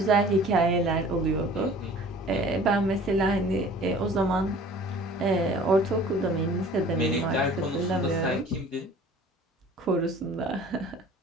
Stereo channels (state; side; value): normal; both; correlation 0.47